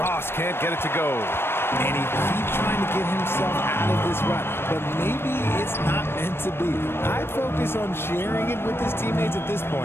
can't get it to go. And he keeps trying to get himself out of this rut, but maybe it's not meant to be. I'd focus on sharing it with his teammates at this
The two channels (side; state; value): right; late; 0.12 ms